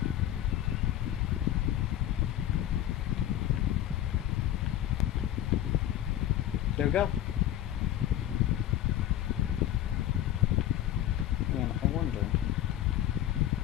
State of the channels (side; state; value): right; quieter; 12.1 dB